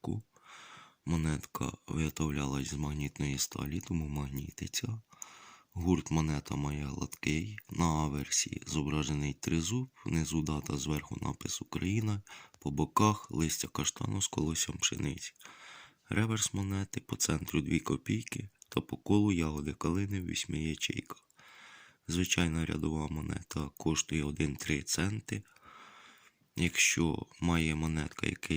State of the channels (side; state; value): both; identical; correlation 1.00